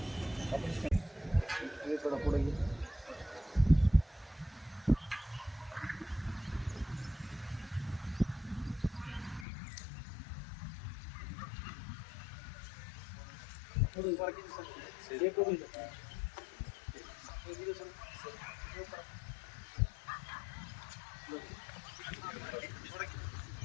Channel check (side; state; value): right; drops out; at 9.5 s